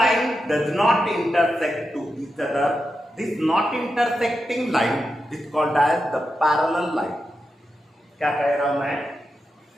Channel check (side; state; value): both; normal; correlation 0.88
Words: does not intersect to each other, this not intersecting line is called as the parallel line. क्या कह रहा हूं मैं?